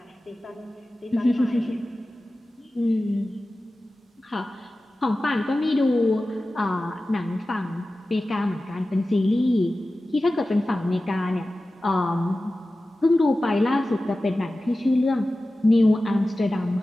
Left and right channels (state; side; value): normal; both; correlation 0.95